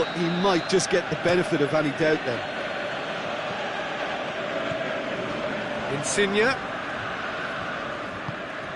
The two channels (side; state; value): both; identical; correlation 1.00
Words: he might just get the benefit of any doubt then. Insigne.